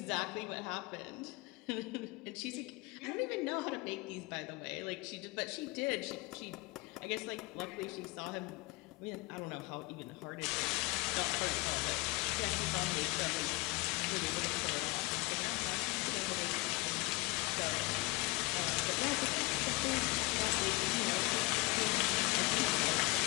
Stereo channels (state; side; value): quieter; right; 24.7 dB